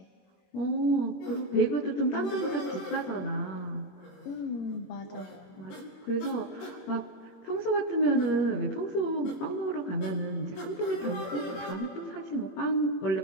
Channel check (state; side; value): late; right; 21 ms